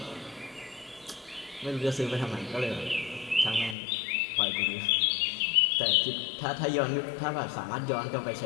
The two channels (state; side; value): drops out; right; at 3.8 s